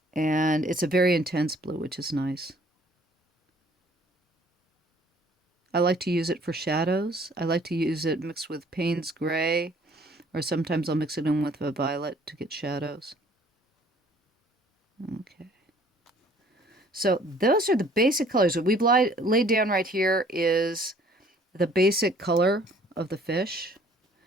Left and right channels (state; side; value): normal; both; correlation 0.57